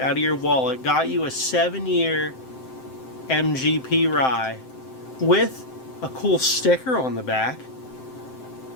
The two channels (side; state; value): right; late; 7.7 ms